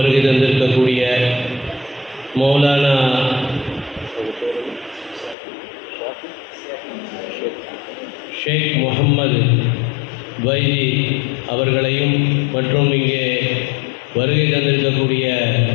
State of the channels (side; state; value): right; drops out; at 5.4 s